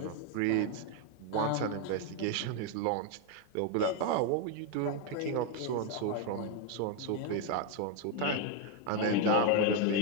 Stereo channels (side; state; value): both; different; correlation 0.01